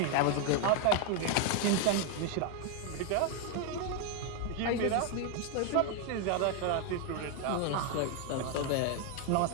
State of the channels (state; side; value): different; both; correlation 0.01